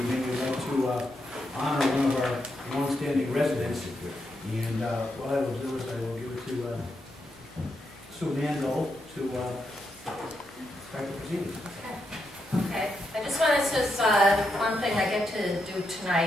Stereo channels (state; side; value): normal; both; correlation 0.82